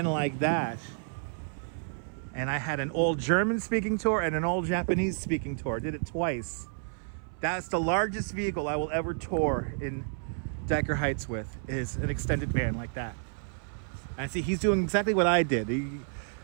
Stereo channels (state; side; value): silent; left; 58 dB below the other